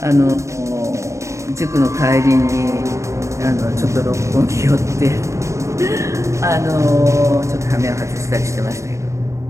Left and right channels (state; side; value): late; left; 0.14 ms